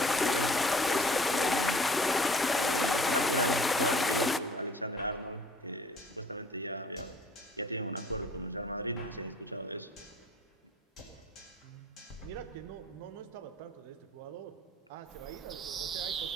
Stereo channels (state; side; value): normal; both; correlation 0.52